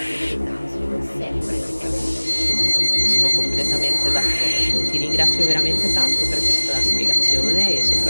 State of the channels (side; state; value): both; inverted; correlation -1.00